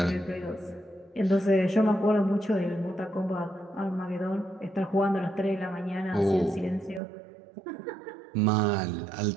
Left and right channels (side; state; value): left; drops out; at 7.0 s